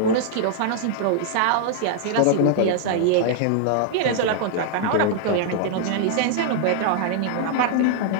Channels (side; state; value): both; different; correlation -0.01